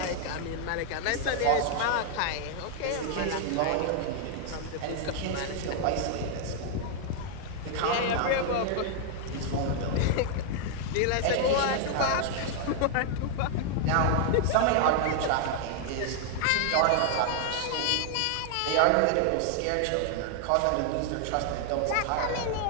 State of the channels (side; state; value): both; different; correlation 0.00